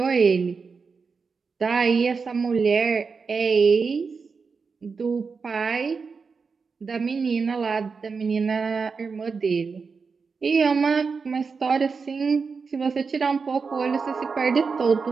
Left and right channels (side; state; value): left; quieter; 5.1 dB